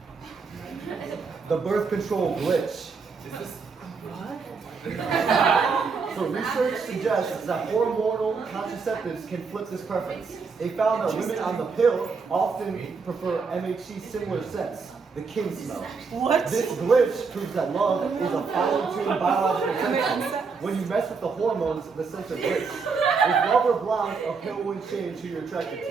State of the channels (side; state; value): left; quieter; 5.0 dB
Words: the birth control glitch. So research suggests that hormonal contraceptives can flip this preference. They found that women on the pill often prefer MHC similar scents, the king smell. What? This glitch proves that love is a fine-tuned biological sensor. When you mess with the hormones, the sensor glitch. If love or blind, a pill wouldn't change who you're attracted